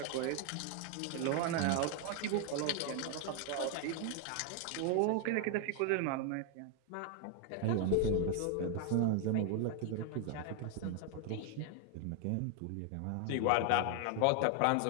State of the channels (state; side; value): different; both; correlation 0.00